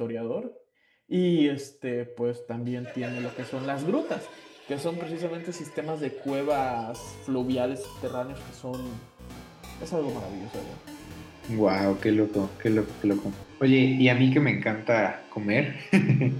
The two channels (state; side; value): identical; both; correlation 1.00